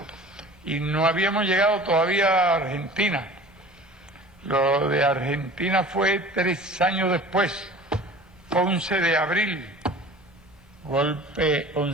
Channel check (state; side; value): normal; both; correlation 0.42